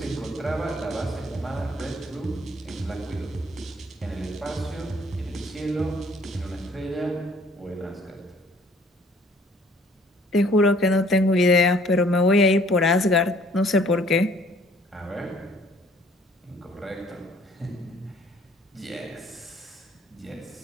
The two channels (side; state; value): both; normal; correlation 0.58